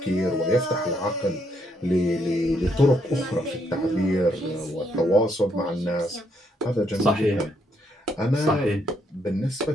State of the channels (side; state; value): both; normal; correlation 0.74